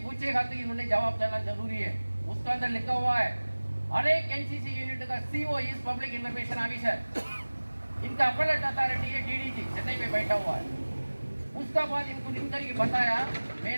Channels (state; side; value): inverted; both; correlation -1.00